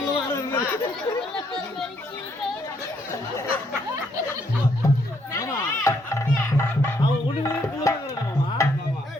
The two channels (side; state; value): both; normal; correlation 0.72